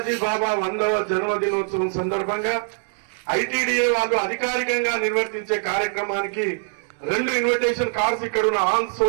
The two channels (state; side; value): silent; left; digital silence